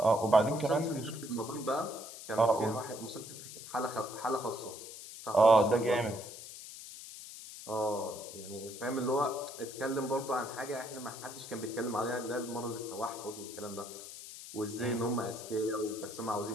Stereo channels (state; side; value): noise; left; hiss, 12 dB below the sound